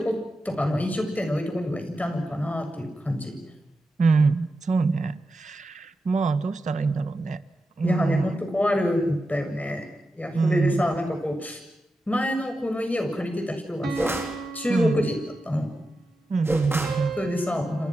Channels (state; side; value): normal; both; correlation 0.90